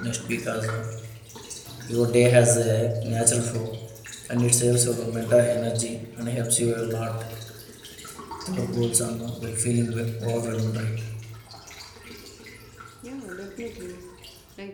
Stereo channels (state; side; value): identical; both; correlation 1.00